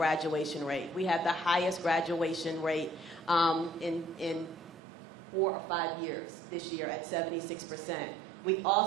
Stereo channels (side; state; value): left; drops out; at 4.8 s